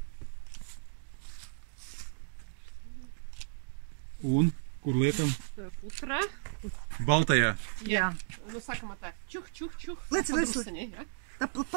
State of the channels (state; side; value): silent; left; digital silence